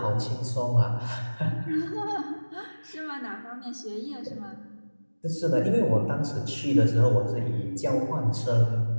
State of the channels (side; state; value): both; inverted; correlation -1.00